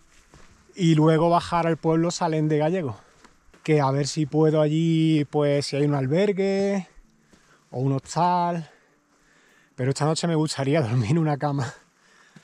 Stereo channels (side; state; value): both; identical; correlation 1.00